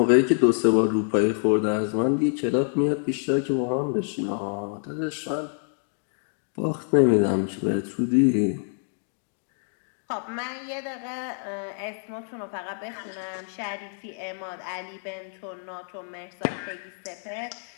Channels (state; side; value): silent; right; digital silence